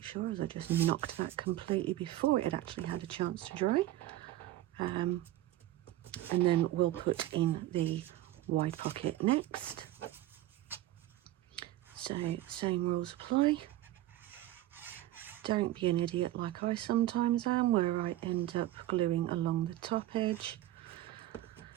sure, as I just knocked that completely before it had actually had a chance to dry. And then we'll put in the wide pocket next. So same rules apply. Don't be an idiot like I sometimes am, where I end up gluing along the top edge.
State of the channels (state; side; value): quieter; left; 14.7 dB